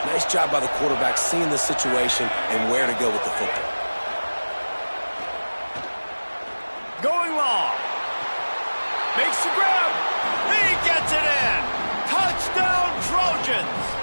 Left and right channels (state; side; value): inverted; both; correlation -1.00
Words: Nice job by the quarterback seeing the situation and where to go with the football. Going long. Makes the grab. He gets it in. Touchdown, Trojans.